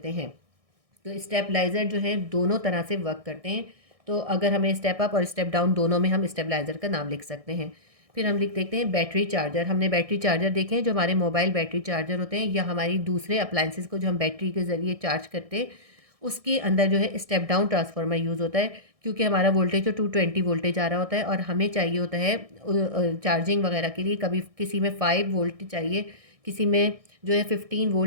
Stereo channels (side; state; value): left; late; 1.6 ms